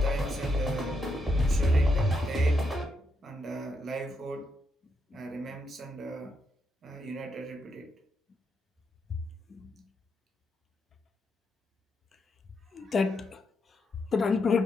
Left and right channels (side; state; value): both; normal; correlation 0.81